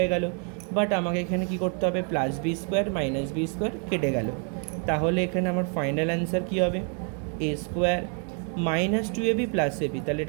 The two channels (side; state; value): left; quieter; 38.9 dB